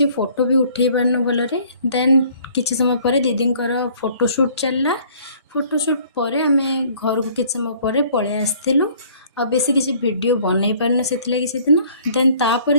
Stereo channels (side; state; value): both; inverted; correlation -0.56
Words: फोटो भी उठे पारनु भलरे। देन किसी समय पर दीदी फोटोशूट चलला। फोटोशूट पर आम घर को किसी समय पर पलि आसलु। आ बेसी किसी वीडियो बनई पारनु से दिन। देन तापर